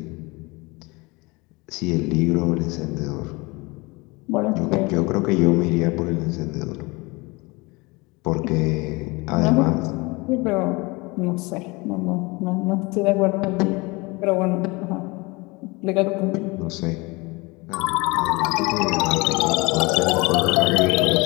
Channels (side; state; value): right; quieter; 25.2 dB